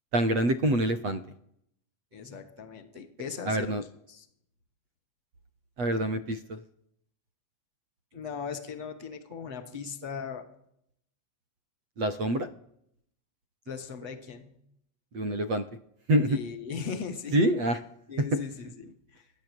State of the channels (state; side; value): late; left; 8.2 ms